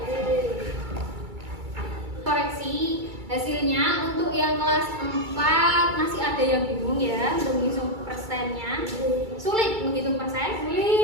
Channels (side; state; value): left; late; 2.3 ms